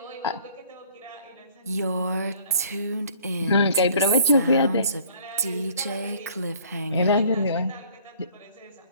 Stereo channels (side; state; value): both; inverted; correlation -0.55